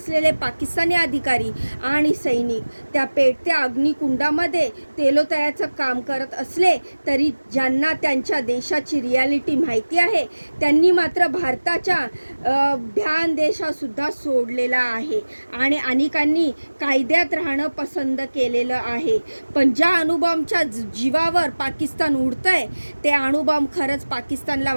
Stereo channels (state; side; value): inverted; both; correlation -1.00